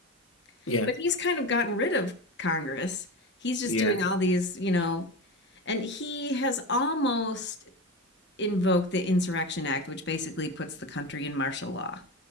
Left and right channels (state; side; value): normal; both; correlation 0.24